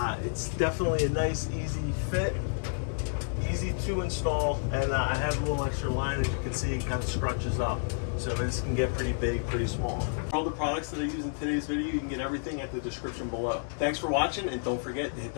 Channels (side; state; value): right; silent; digital silence